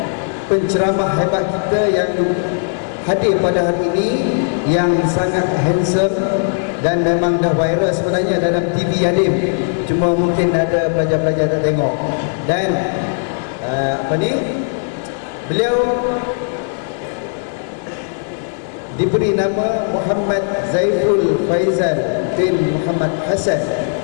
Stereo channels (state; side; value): silent; right; digital silence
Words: penceramah hebat kita yang hadir pada hari ini, yang sangat handsome dan memang dah viral sebenarnya dalam TV Yadim, cuma mungkin ada pelajar-pelajar tak tengok. Dan beliau diberi nama Muhammad Zaiful Faizal bin Muhammad Hasan.